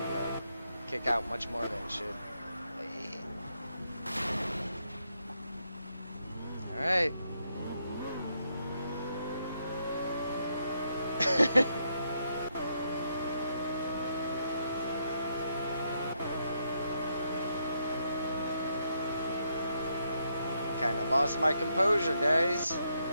kick out much more than it should. Alright. lost my composure, guys.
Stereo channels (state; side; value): inverted; both; correlation -0.78